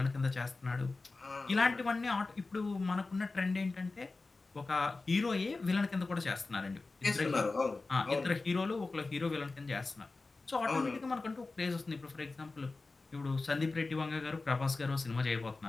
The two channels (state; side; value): quieter; right; 3.6 dB